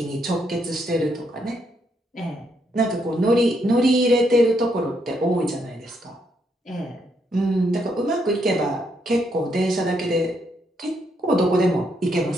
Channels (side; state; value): both; normal; correlation 0.76